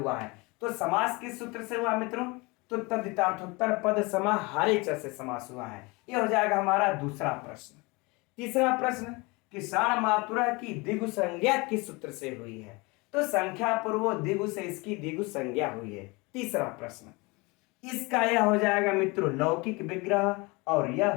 है। तो समास किस सूत्र से हुआ मित्रों, तो तद्धितार्थोत्तर पद समाहारे च से समास हुआ है। यह हो जाएगा हमारा दूसरा प्रश्न। तीसरा प्रश्न कि षड्मातुरः की द्विगु संज्ञा किस सूत्र से हुई है, तो संख्या पूर्व द्विगु से इसकी द्विगु संज्ञा हुई है। तीसरा प्रश्न, इसका यह हो जाएगा मित्रों लौकिक विग्रह और यह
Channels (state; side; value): quieter; right; 26.0 dB